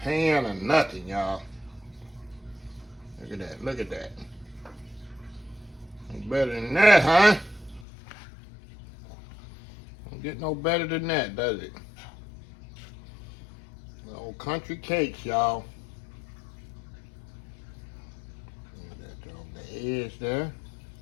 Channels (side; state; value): right; drops out; at 7.9 s